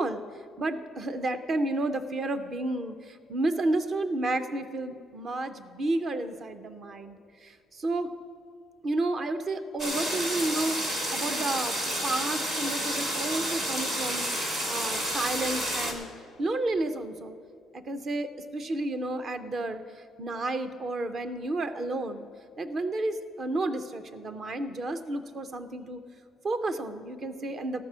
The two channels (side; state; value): both; normal; correlation 0.79